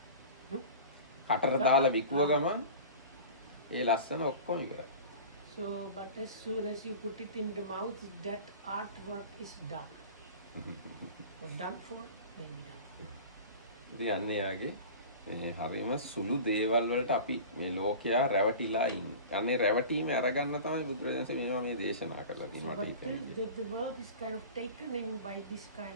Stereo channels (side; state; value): both; inverted; correlation -0.37